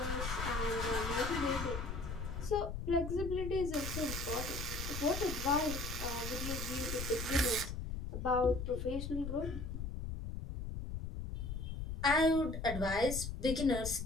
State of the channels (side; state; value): left; noise; rumble, 5 dB below the sound